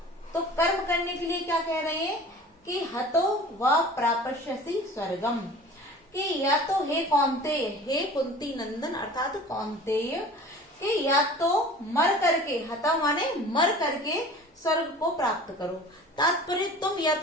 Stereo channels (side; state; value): both; normal; correlation 0.42